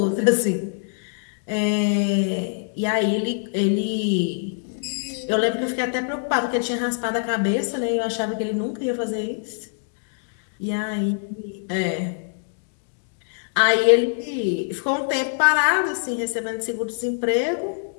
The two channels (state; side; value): silent; right; digital silence